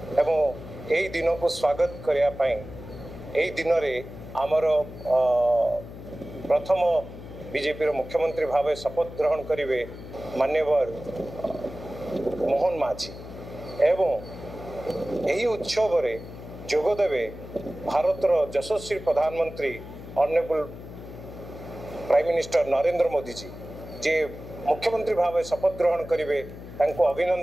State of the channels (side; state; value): left; noise; hum, 13 dB below the sound